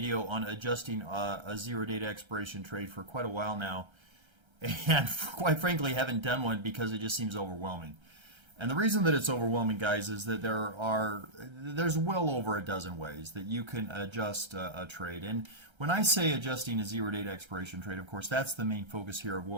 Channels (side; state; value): left; late; 1.3 ms